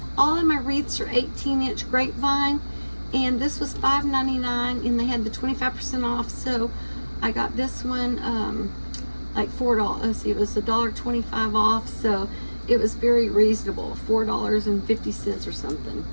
all of my wreaths are 18-inch grapevine. And this was $5.99, and they had the 25% off, so I got this one like $4. Let's see, it was $1.25 off, so it was very reasonable, $4.50 or something.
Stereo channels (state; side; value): inverted; both; correlation -1.00